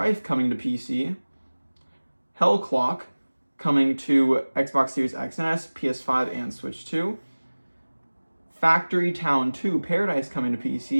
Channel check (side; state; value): both; inverted; correlation -1.00